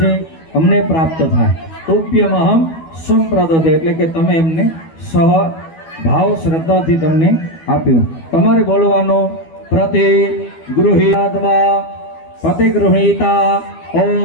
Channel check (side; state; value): right; late; 12 ms